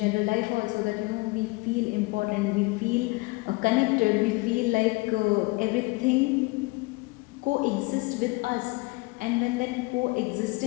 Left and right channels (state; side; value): quieter; right; 24.9 dB